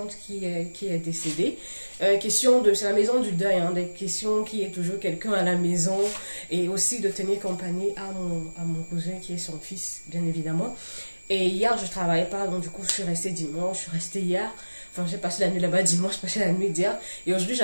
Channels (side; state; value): both; inverted; correlation -1.00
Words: qui est décédée. C'est la maison du deuil, hein, des questions qui est toujours quelqu'un à la maison et aussi de tenir compagnie à mon cousin qui est son fils, bien évidemment. Et hier, je ne travaillais pas, donc du coup, je suis restée dimanche, je suis restée hier. Enfin, j'ai passé la nuit là-bas dimanche, j'ai passé la nuit d'hier. Et aujourd'hui,